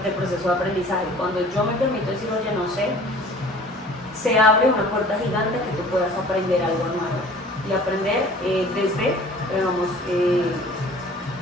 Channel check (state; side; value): normal; both; correlation 0.48